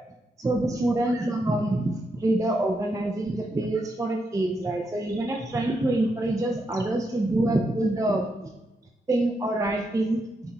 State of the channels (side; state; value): both; normal; correlation 0.82